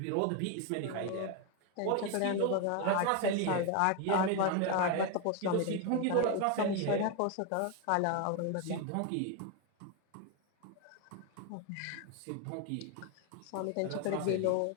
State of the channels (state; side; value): different; both; correlation 0.01